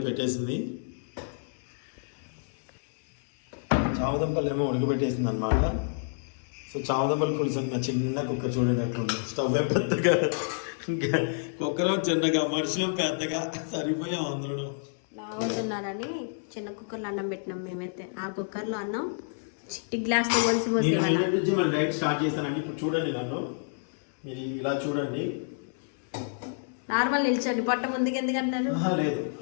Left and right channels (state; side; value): silent; right; 59 dB below the other